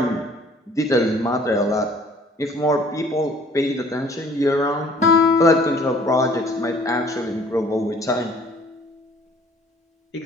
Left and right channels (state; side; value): normal; both; correlation 0.55